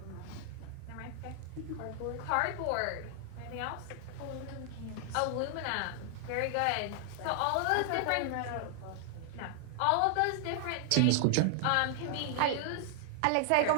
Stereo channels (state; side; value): different; both; correlation 0.00